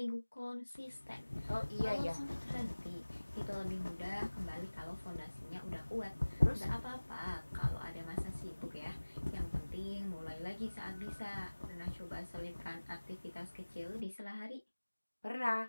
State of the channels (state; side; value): inverted; both; correlation -1.00